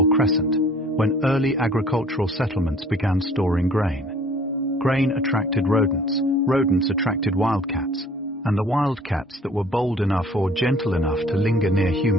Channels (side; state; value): both; normal; correlation 0.53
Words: Crescent, when early agricultural settlements began storing grain. Grain attracted rodents, rodents attracted wildcats, and the wildcats that were bold enough or gentle enough to linger near